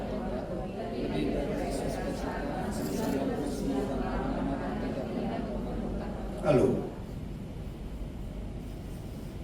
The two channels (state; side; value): identical; both; correlation 1.00